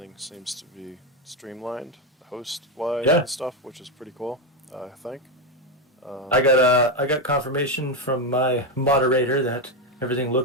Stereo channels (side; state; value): both; normal; correlation 0.08